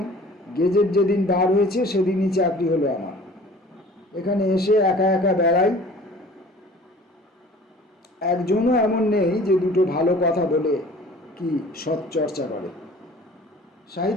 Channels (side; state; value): both; normal; correlation 0.47